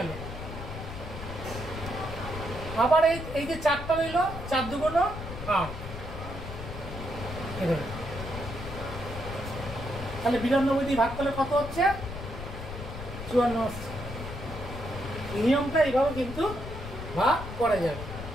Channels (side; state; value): left; noise; rumble, 9 dB below the sound